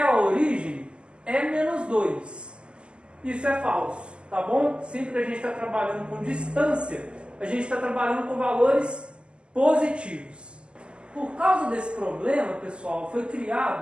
a origem é menos 2. Isso é falso, tá bom? Sempre que a gente está trabalhando com distância, a gente está trabalhando com valores positivos. Por causa desse problema, pessoal, foi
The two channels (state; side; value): late; left; 0.050 ms